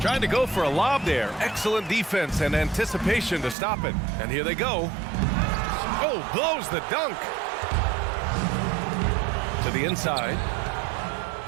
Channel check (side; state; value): left; drops out; at 3.6 s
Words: to go for a lob there. Excellent defense and anticipation to stop it. And here they go. Oh, blows the dunk. To the inside.